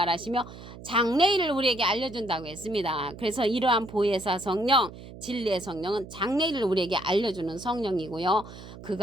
장래일을 우리에게 알려준다고 했습니다. 그래서 이러한 보혜사 성령, 진리의 성령은 장래일을 우리에게 알려주는 성령이고요.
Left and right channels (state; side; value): noise; right; hum, 15 dB below the sound